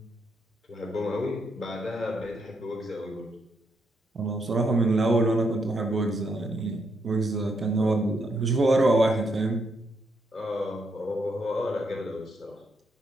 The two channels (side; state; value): both; normal; correlation 0.77